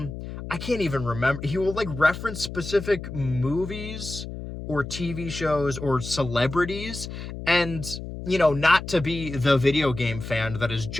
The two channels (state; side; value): noise; left; hum, 9 dB below the sound